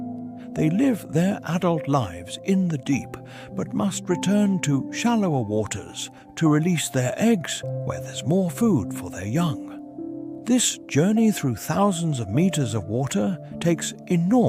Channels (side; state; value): both; identical; correlation 1.00